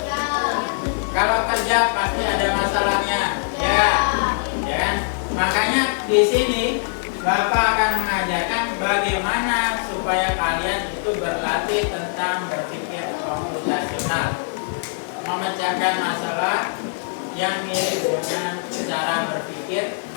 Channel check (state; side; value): silent; right; digital silence